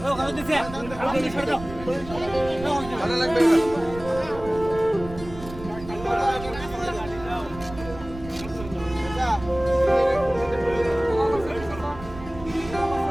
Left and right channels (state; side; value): noise; right; rumble, 14 dB below the sound